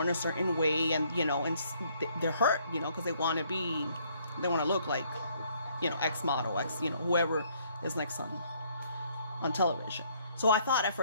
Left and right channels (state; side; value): inverted; both; correlation -0.66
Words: a certain way, and, you know, and they're hurt, you know, because they want to look like, you know, X model, you know, whoever is next on television. So I thought at